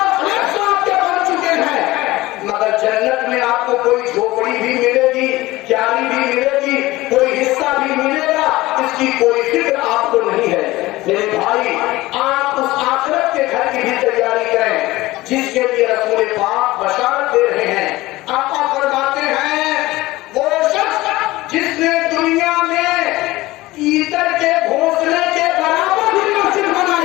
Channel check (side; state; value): right; quieter; 18.7 dB